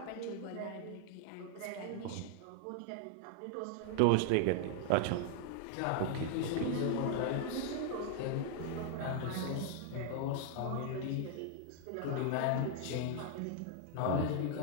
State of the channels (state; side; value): different; both; correlation 0.00